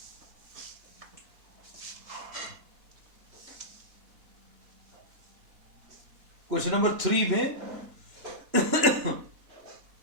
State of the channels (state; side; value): late; left; 3.0 ms